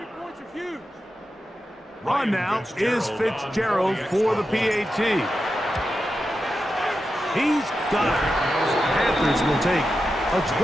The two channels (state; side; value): normal; both; correlation 0.90